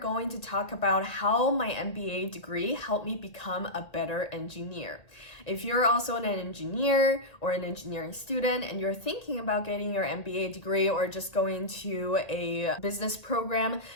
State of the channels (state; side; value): late; right; 1.7 ms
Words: to talk about how my MBA degree helped me become a better engineer. If you're also an engineer or an engineering student and you're thinking about getting your MBA degree or just going to a business program,